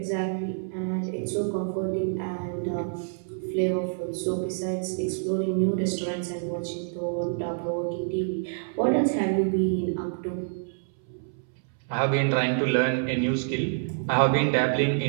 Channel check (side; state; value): left; silent; 60 dB below the other